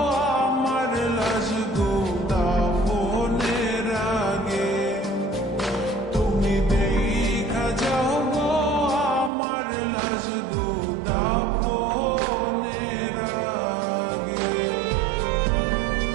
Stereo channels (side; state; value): left; drops out; at 9.3 s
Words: আমার লাজ গো দাফনের আগে, তুমি দেখা যাও গো আমার লাজ গো দাফনের আগে।